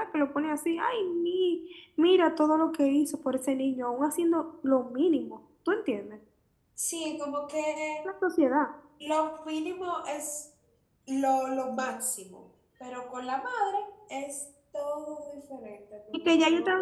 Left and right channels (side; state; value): both; identical; correlation 1.00